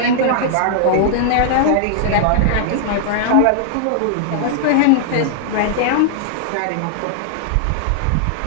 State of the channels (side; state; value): both; different; correlation -0.01